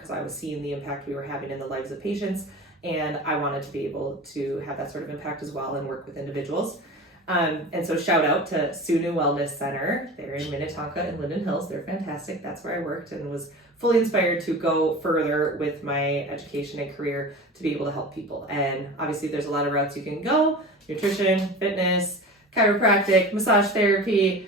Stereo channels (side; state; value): both; normal; correlation 0.34